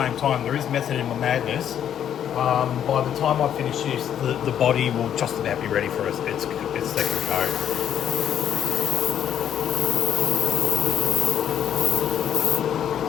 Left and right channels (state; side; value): quieter; right; 9.7 dB